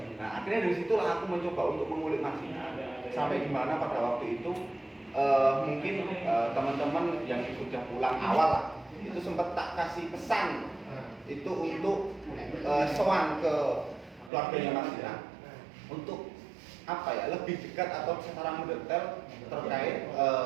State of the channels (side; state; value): left; drops out; at 14.3 s